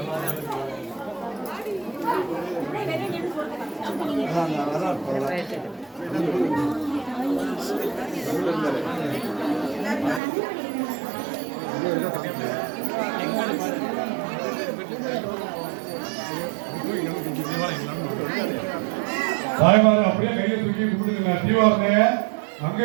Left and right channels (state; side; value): drops out; left; at 10.2 s